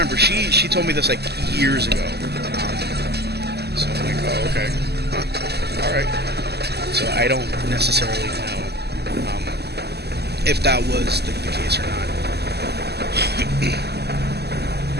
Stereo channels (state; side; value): late; left; 0.48 ms